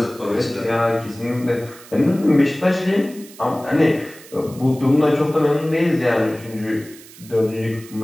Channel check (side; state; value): right; noise; hiss, 20 dB below the sound